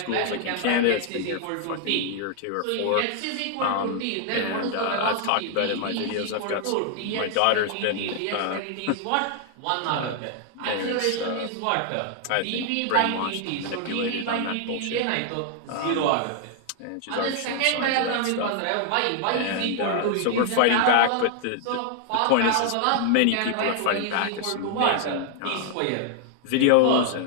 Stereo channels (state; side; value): different; both; correlation 0.00